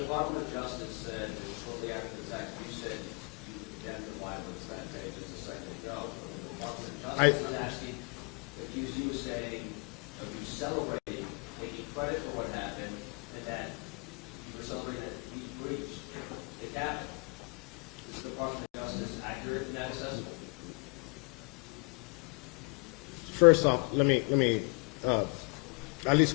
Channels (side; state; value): right; quieter; 36.1 dB